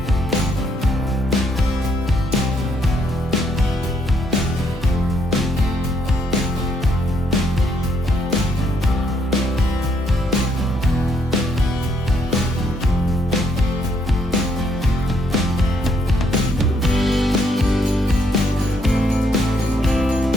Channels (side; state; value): both; normal; correlation 0.72